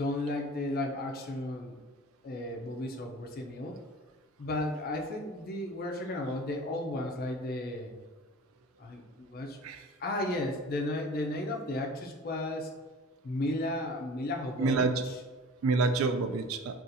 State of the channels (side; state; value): both; normal; correlation 0.42